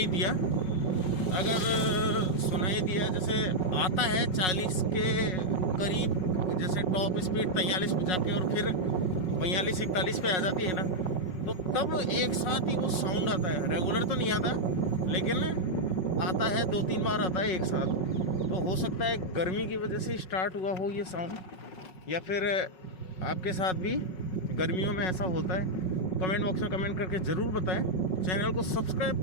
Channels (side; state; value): right; late; 5.4 ms